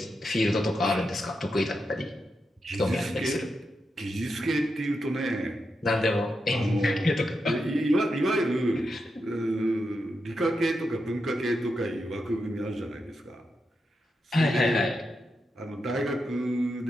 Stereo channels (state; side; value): normal; both; correlation 0.86